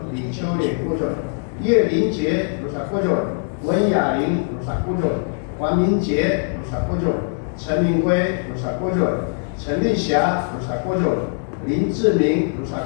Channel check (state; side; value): silent; right; digital silence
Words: 李秋烈国军，叶林杰鲁萨国军，文雅玲鲁萨国军，黄明杰鲁萨国军，陈明辉鲁萨国军，陈立霞鲁萨国军，林志明鲁萨